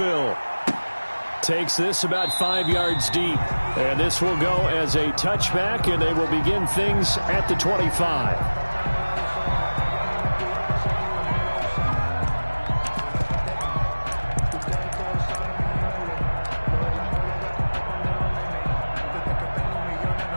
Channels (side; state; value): both; inverted; correlation -1.00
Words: Takes this about 5 yards deep, and this will go as a touchback, and they will begin things at the 25.